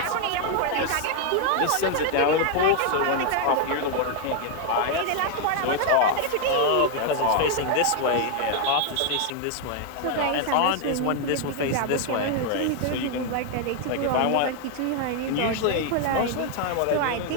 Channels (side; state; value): both; different; correlation 0.00